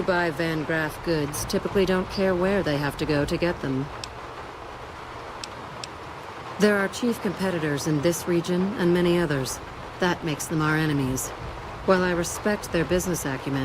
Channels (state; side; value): identical; both; correlation 1.00